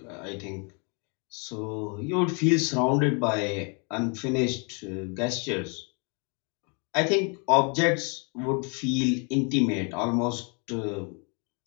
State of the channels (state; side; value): quieter; right; 35.6 dB